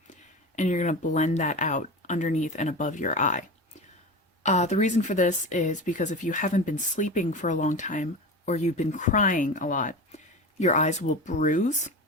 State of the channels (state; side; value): normal; both; correlation 0.28